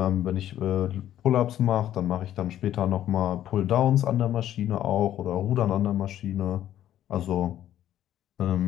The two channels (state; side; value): quieter; right; 11.9 dB